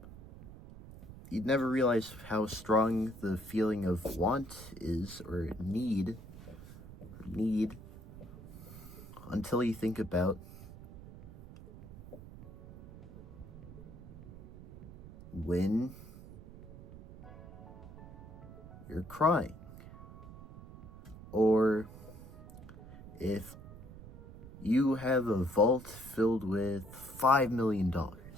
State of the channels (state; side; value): noise; right; rumble, 16 dB below the sound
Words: never realize how strong the feeling of want is, or need, until you think about when you're crying, or if you have a vault filled with $5 million